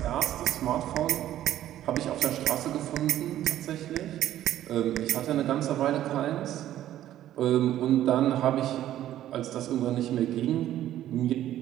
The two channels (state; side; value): quieter; left; 12.6 dB